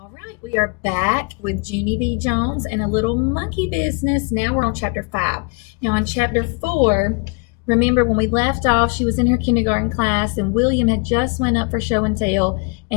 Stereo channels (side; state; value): right; quieter; 32.5 dB